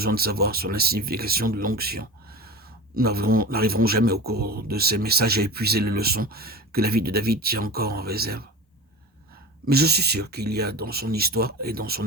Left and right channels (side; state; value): both; normal; correlation 0.31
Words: de savoir sur la signification de l'onction. Nous n'arriverons jamais au cours de ces messages à épuiser les leçons que la vie de David tient encore en réserve. Mais je suis sûr qu'il y a dans son histoire et dans son